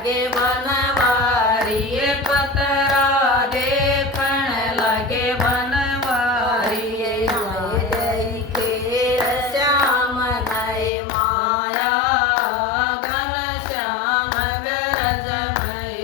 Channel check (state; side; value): drops out; right; at 10.9 s